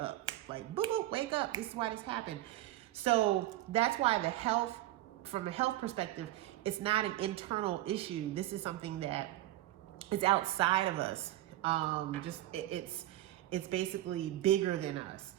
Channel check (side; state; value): left; quieter; 15.0 dB